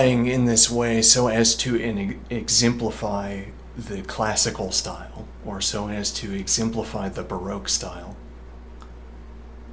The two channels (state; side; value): identical; both; correlation 1.00